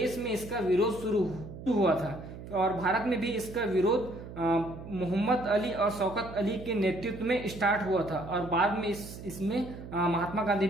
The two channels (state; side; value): noise; right; hum, 12 dB below the sound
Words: में इसका विरोध शुरू हुआ था और भारत में भी इसका विरोध मोहम्मद अली और शौकत अली के नेतृत्व में स्टार्ट हुआ था और बाद में इसमें महात्मा गांधी